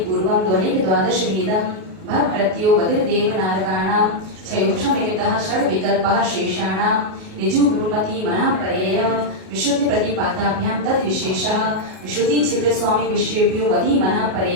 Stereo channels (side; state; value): left; late; 38 ms